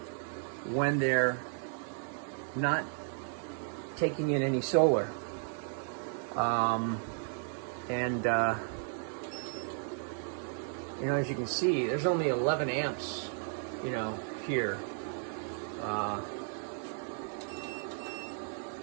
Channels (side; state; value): left; silent; 55 dB below the other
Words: when they're not taking in any solar. You know, as you can see, there's only 11 amps, you know, here.